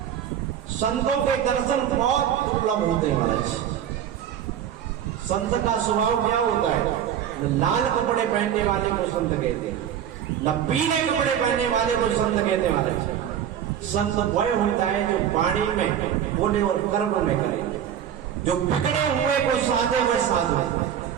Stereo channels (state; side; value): quieter; left; 9.7 dB